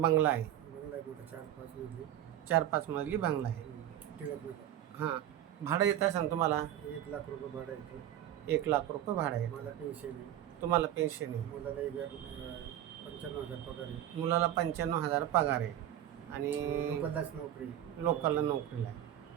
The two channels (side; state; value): left; quieter; 11.7 dB